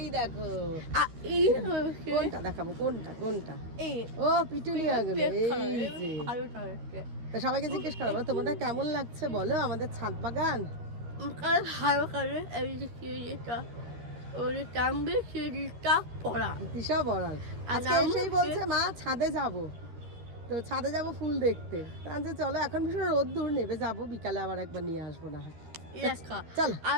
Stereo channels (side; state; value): left; late; 12 ms